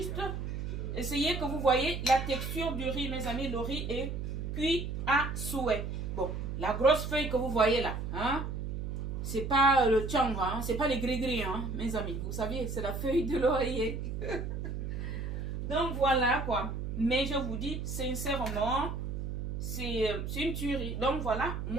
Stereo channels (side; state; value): right; noise; hum, 4 dB below the sound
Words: essayer que vous voyez la texture du riz, mes amis. Le riz est cuit à souhait. Bon, la grosse feuille que vous voyez là, hein, c'est pas le tchang, hein, c'est pas les gris-gris, hein, mes amis. Vous savez, c'est la feuille de l'oreiller. Donc voilà quoi. Mais je vous dis sincèrement, c'est une tuerie. Donc voilà,